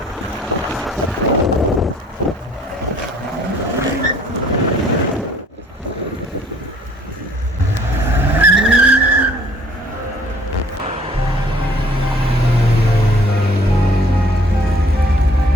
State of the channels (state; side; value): normal; both; correlation 0.58